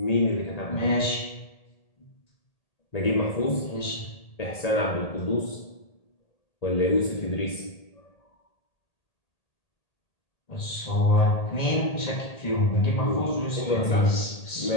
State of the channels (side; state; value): right; late; 1.8 ms